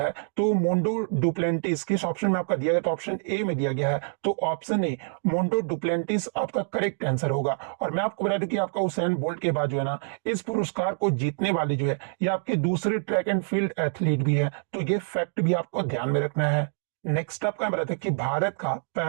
तो मोंडो डुप्लेंटिस किस ऑप्शन में आपका दिया गया, तो ऑप्शन ए में दिया गया है। तो ऑप्शन ए मोंडो डुप्लेंटिस आपका करेक्ट आंसर होगा। और मैं आपको बता दूं कि आपका उसेन बोल्ट के बाद जो है ना इस पुरस्कार को जीतने वाली जो है ये आपके दूसरे ट्रैक एंड फील्ड एथलीट भी है। तो ये फैक्ट भी आपको ध्यान में रखना है। नेक्स्ट आपका बताया कि भारत का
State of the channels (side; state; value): left; silent; 61 dB below the other